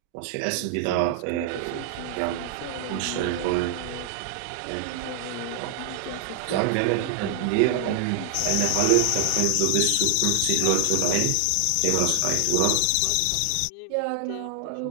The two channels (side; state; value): both; different; correlation 0.00